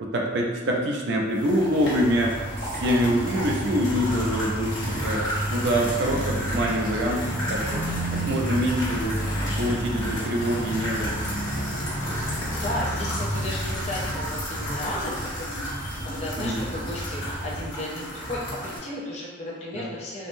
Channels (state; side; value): normal; both; correlation 0.53